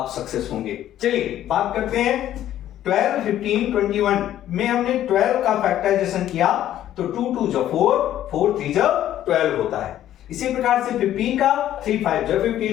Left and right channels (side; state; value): right; quieter; 12.1 dB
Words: सक्सेस होंगे। चलिए बात करते हैं 12, 15, 21 में हमने 12 का फैक्टराइजेशन किया तो 2 2 जा 4, 4 3 जा 12 होता है। इसी प्रकार से 15 का 3 5 जा